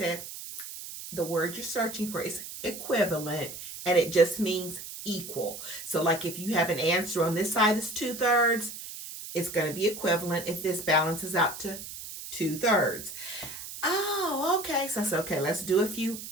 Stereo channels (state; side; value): noise; right; hiss, 10 dB below the sound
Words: the word you're searching for is equivalent, and it just means equal. So like if you have an answer on this side is 2/3, it's going to be equivalent if this balances out to 2/3. Oh, okay. So I said, okay, let's do a few